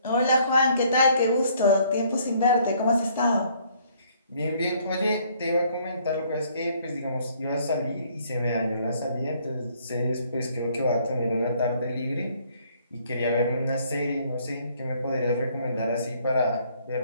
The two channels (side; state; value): both; inverted; correlation -0.63